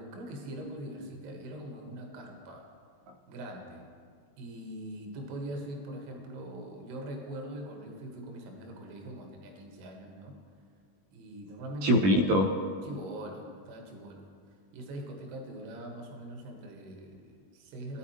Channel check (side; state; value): left; late; 21 ms